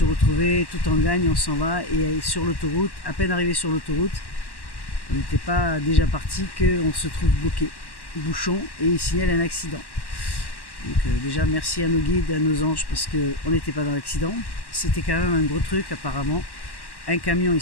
retrouver, tout en gagne, on s'en va. Et sur l'autoroute, à peine arrivé sur l'autoroute, on n'était pas déjà parti qu'on se trouve bloqué, bouchon, et il signale un accident. Donc déjà, merci à nos guides, à nos anges, parce qu'on n'était pas dans l'accident. C'était quand même un gros truc, apparemment. Un camion et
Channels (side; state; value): right; late; 1.1 ms